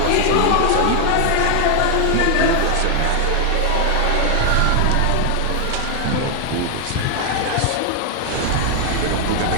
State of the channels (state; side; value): different; both; correlation 0.00